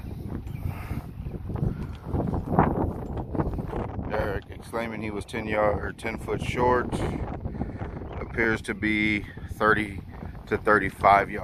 Eric exclaiming he was 10 foot short. Appears to be 30 to 35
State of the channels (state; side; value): identical; both; correlation 1.00